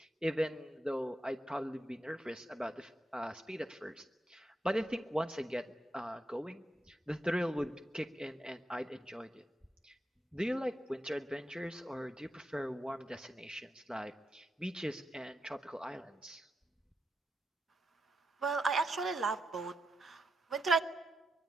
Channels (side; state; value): both; normal; correlation 0.84